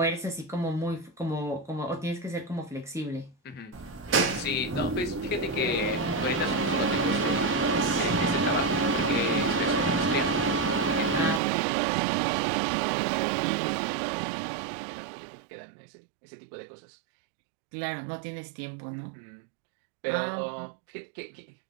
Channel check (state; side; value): drops out; left; at 11.4 s